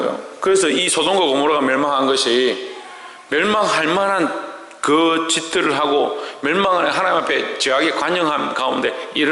그래서 이 소돔과 고모라가 멸망한 것이 멸망할 만한 그 짓들을 하고 멸망을 하나님 앞에 죄악의 관영함 가운데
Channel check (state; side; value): identical; both; correlation 1.00